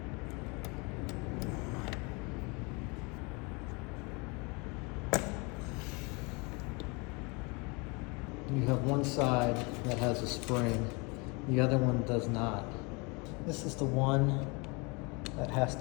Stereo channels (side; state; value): right; quieter; 29.3 dB